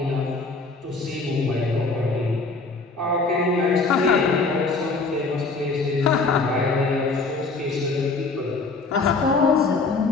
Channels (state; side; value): quieter; right; 3.9 dB